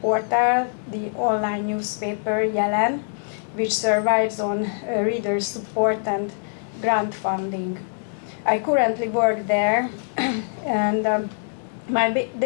the online newspaper Jelen, which survives on reader support and grant funding. I currently work there, and my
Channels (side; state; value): right; silent; digital silence